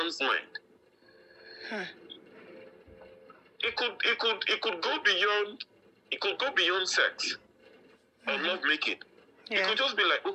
mind. It could go beyond sex or love making. Yeah. It could just be like,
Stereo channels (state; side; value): identical; both; correlation 1.00